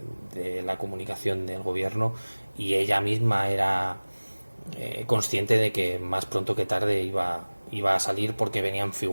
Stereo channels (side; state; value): both; inverted; correlation -1.00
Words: la comunicación del gobierno y ella misma era consciente de que más pronto que tarde iba a salir porque venían